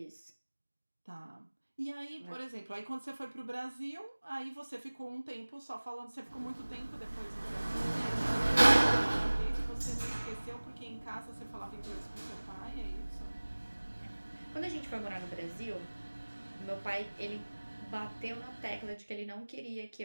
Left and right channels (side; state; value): both; inverted; correlation -1.00